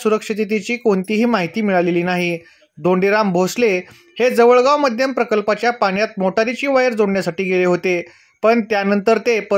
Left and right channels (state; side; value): identical; both; correlation 1.00